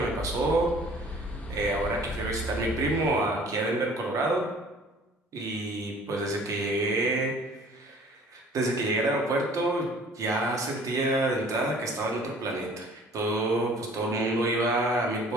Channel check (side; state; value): both; normal; correlation 0.52